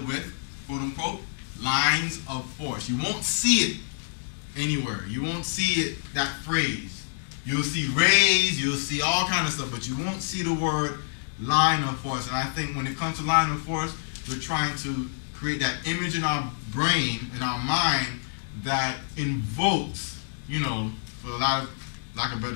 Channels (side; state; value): right; silent; digital silence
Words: with, quote unquote, lines of force. You won't see it anywhere. You won't see it, that phrase. You'll see rays, you'll see all kind of stuff, but you won't see the word line of force. And I think when it comes to line of force, we're trying to create that image in our brain, in our mind, that invokes, for a lot of lack of a